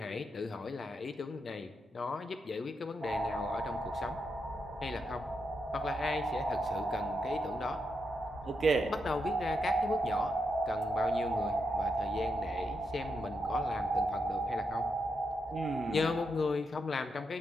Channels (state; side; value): normal; both; correlation 0.83